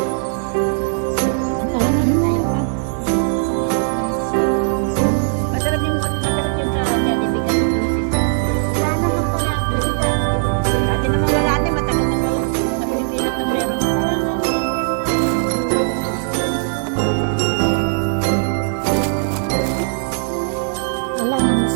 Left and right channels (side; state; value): left; silent; digital silence